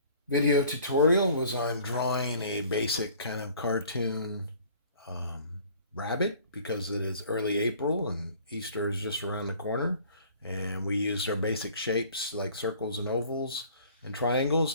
video tutorial was on drawing a basic kind of cartoon um, rabbit because it is early April and Easter is just around the corner. And we used our basic shapes like circles and ovals and triangles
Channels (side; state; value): both; inverted; correlation -0.52